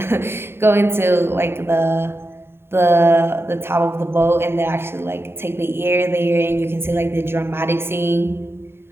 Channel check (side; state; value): left; late; 0.11 ms